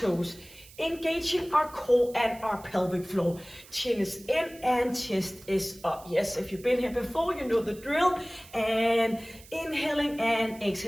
engaging our core and our pelvic floor. Chin is in and chest is up. Yes, if you've been here before, you know the drill. And inhaling and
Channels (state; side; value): noise; right; hiss, 21 dB below the sound